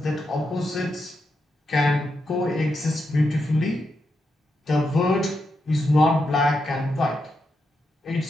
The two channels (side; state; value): both; normal; correlation 0.84